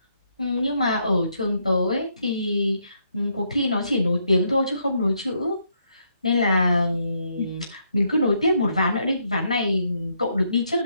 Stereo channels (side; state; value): both; inverted; correlation -0.76